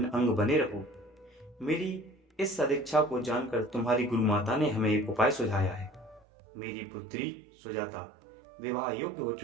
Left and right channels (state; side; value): drops out; left; at 6.2 s